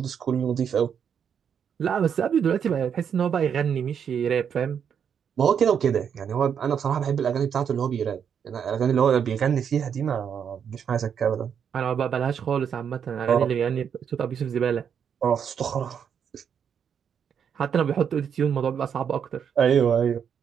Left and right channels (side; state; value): left; quieter; 7.7 dB